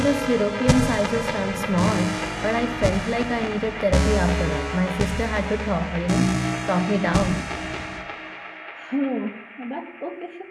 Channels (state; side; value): identical; both; correlation 1.00